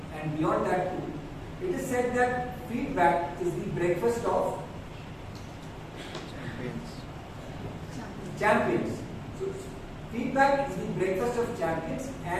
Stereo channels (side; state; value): both; identical; correlation 1.00